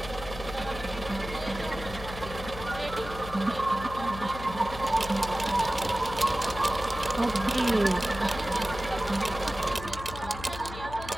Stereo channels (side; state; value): left; noise; hum, 11 dB below the sound